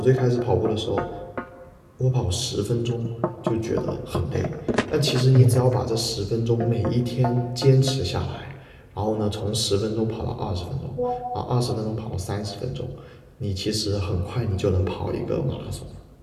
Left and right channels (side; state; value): both; identical; correlation 1.00